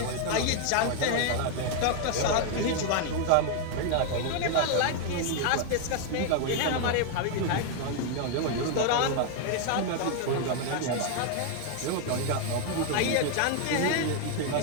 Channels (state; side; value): different; both; correlation 0.00